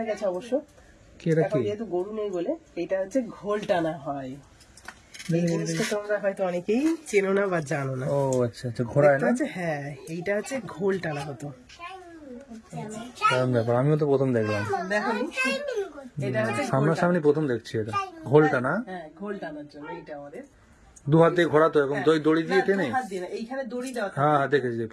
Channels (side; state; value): both; identical; correlation 1.00